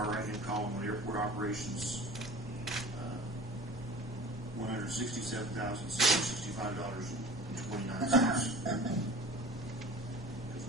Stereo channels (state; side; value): normal; both; correlation 0.42